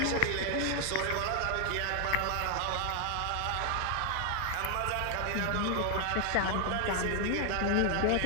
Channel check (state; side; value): different; both; correlation 0.00